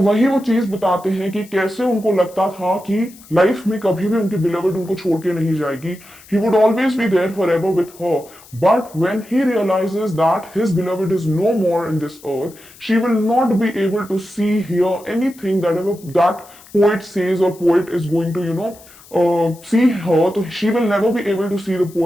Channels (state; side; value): noise; left; hiss, 23 dB below the sound